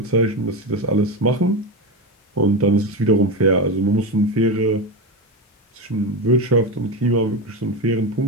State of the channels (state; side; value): normal; both; correlation 0.17